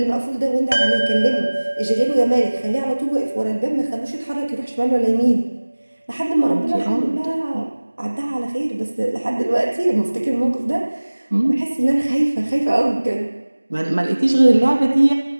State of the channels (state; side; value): inverted; both; correlation -1.00